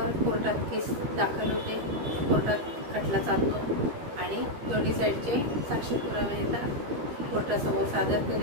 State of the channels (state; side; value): late; left; 13 ms